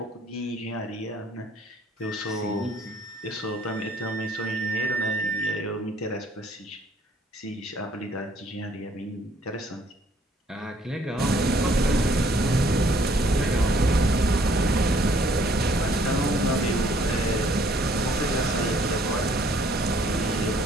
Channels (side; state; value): both; normal; correlation 0.62